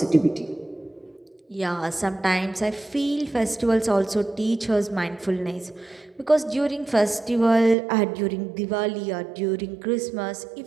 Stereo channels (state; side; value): drops out; left; at 7.8 s